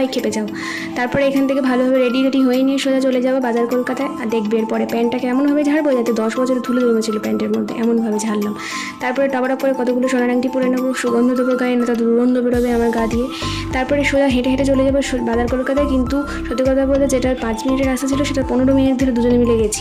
খেপে যাও। তারপরে এখান থেকে ভালোভাবে রেডি হয়ে নিয়ে সোজা চলে যাবো বাজার কলকাতায়। আর দেখবে এরপরে প্যান্টটা কেমনভাবে ঝাড়বো যাতে 10 বছরের ধুলো জমেছিল প্যান্টের মধ্যে, এমনভাবে ঝাড়লাম। তারপরে টপাটপ করে কতগুলো সোনার আংটি পরে নেবো, সুগন্ধ দেবো গায়ে, না তো দুর্গন্ধ বেরোবে আমার গা দিয়ে। তারপরে সোজা হেঁটে হেঁটে চলে যাবো বাজার কলকাতায়। কিন্তু সত্যি কথা বলতে যেটার 5 মিনিটের রাস্তা ছিল সেটা 15 মিনিট ধরে দুজনে মিলে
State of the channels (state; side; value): identical; both; correlation 1.00